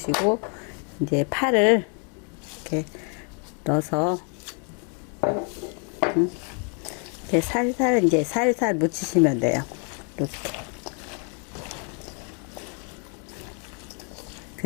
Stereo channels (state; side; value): quieter; right; 39.1 dB